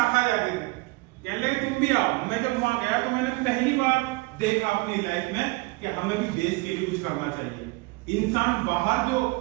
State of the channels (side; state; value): left; quieter; 24.1 dB